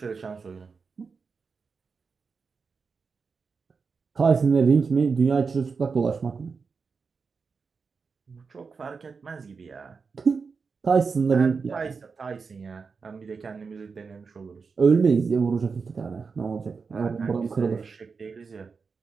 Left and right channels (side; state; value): left; quieter; 5.1 dB